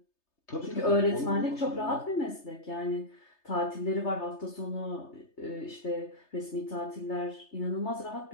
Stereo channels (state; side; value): late; right; 3.3 ms